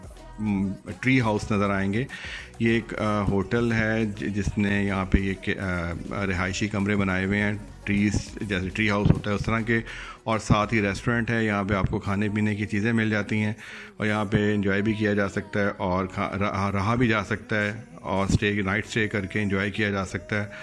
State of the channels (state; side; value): identical; both; correlation 1.00